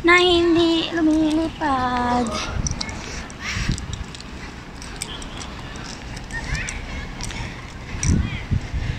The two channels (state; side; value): identical; both; correlation 1.00